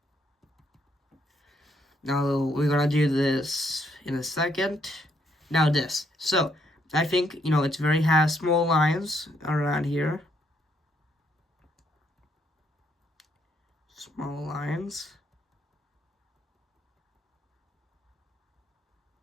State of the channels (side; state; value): both; normal; correlation 0.73